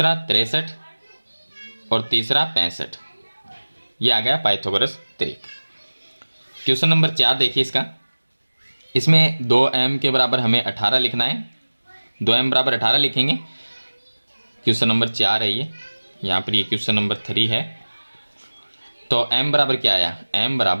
63 और तीसरा 65। ये आ गया पाइथागोरस त्रिक। क्वेश्चन नंबर 4 देखिए इसका, इसमें 2m के बराबर हमें 18 लिखना है, 2m बराबर 18 लिखेंगे। क्वेश्चन नंबर 4 है ये, यहाँ पर ये क्वेश्चन नंबर 3 है। तो m बराबर क्या आया, m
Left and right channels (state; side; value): inverted; both; correlation -1.00